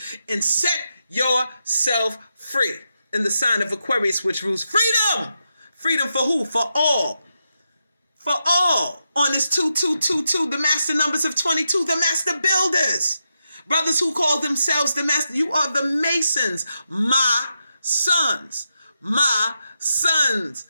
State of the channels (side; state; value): both; inverted; correlation -0.86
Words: and set yourself free in the sign of Aquarius, which rules freedom. Freedom for who? For all. For all. On this 2222, the master numbers of 22, the master builders. Brothers who call themselves the master. You are the masons. My sons. My sons